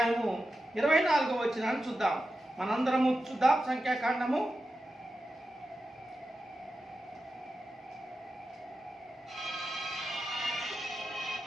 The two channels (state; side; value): normal; both; correlation 0.91